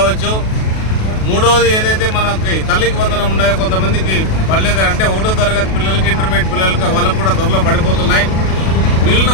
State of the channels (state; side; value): late; right; 37 ms